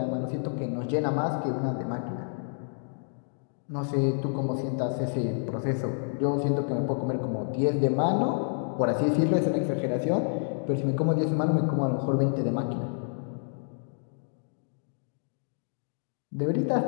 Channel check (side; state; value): right; silent; digital silence